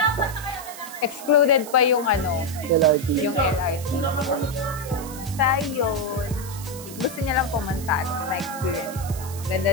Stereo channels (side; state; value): right; noise; hiss, 14 dB below the sound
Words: Excluded pa yung LRT. yung LRT. Sa yun, gusto niya lang pumunta na experience.